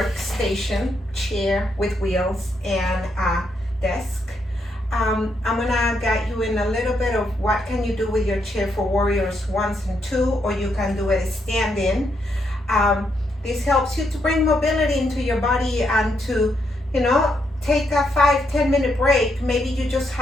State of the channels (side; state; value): both; normal; correlation 0.78